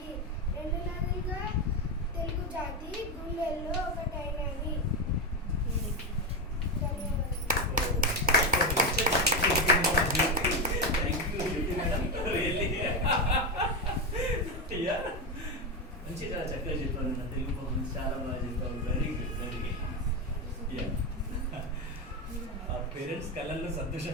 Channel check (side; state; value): both; normal; correlation 0.12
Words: రెండు నదులుగా తెలుగు జాతి గుండెల్లో ఒకటైనది. మంచిగా చక్కగా చెప్పాను. నా తెలుగు పర్ఫార్మెన్స్ చాలా బాగా చెప్పావు. Very good, very good. ఆ పేరెంట్స్ కళ్ళల్లో సంతోషం